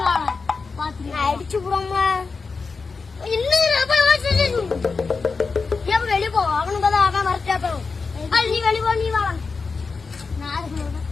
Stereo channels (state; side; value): quieter; right; 4.6 dB